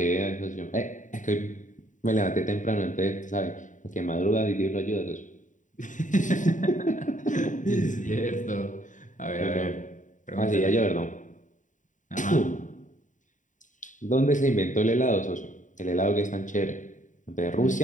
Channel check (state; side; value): late; right; 0.37 ms